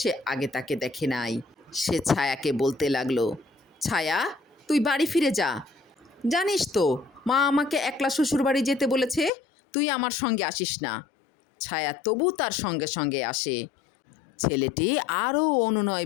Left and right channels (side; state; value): right; drops out; at 9.3 s